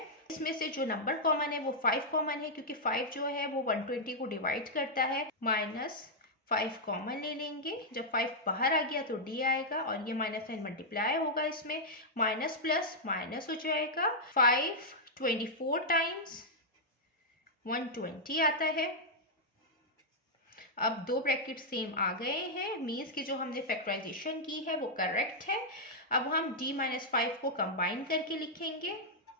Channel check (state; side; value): normal; both; correlation -0.06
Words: इसमें से जो नंबर कॉमन है वो 5 कॉमन है, क्योंकि 5 जो है वो 120 को डिवाइड करता है। -5 कॉमन ले लेंगे, जब 5 बाहर आ गया तो d आएगा और ये माइनस साइन मल्टीप्लाई होगा, इसमें माइनस प्लस माइनस हो जाएगा। 5 24 टाइम्स 120 आता है। अब दो ब्रैकेट सेम आ गए हैं, मीन्स कि जो हमने फैक्टराइजेशन की है वो करेक्ट है। अब हम d - 5 को कंबाइन करके लिखेंगे,